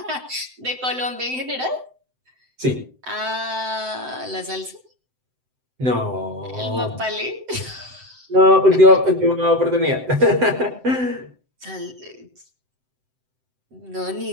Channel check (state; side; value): late; left; 7.8 ms